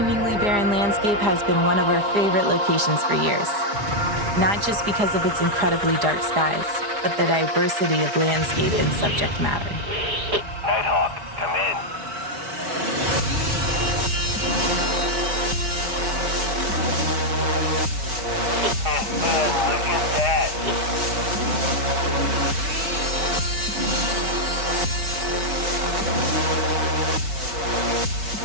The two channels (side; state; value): left; late; 4.9 ms